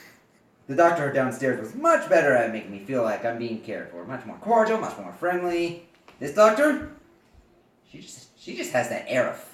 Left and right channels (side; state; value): both; identical; correlation 1.00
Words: The doctor downstairs was much better at making me feel like I'm being cared for. Much more cordial, much more friendly. This doctor, she just has that air of